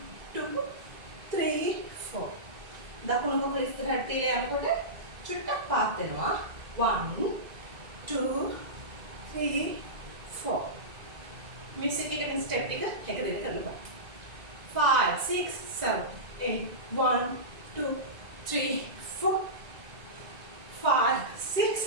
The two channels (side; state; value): left; late; 1.9 ms